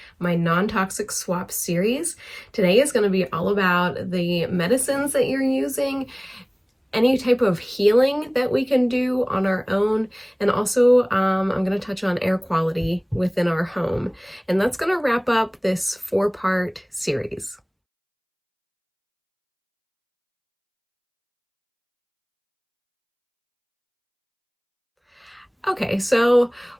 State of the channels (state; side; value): identical; both; correlation 1.00